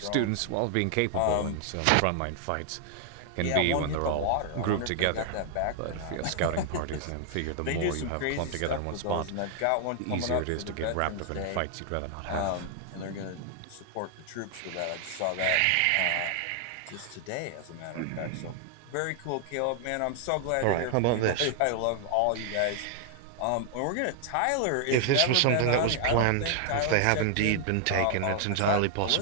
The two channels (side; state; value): both; different; correlation 0.00